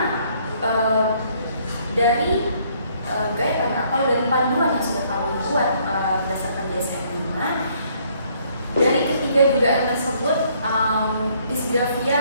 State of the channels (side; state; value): both; inverted; correlation -0.65